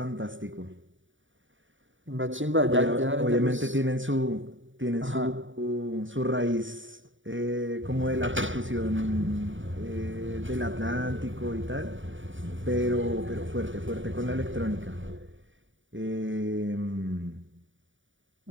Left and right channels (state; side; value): late; left; 0.56 ms